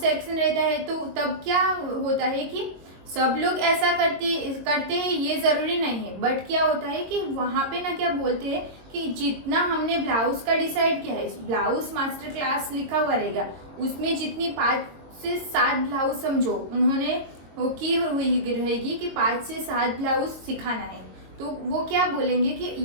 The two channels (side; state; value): left; late; 22 ms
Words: रहता है तो तब क्या होता है कि सब लोग ऐसा करते हैं, ये जरूरी नहीं है। बट क्या होता है कि वहाँ पे ना क्या बोलते हैं कि जितना हमने ब्लाउज का डिसाइड किया है, ब्लाउज मास्टर क्लास लिखा हुआ रहेगा, उसमें जितनी 5 से 7 ब्लाउज समझो उन्होंने वो की हुई रहेगी कि 5 से 7 ब्लाउज सिखाना है। तो वो क्या बोलेंगे कि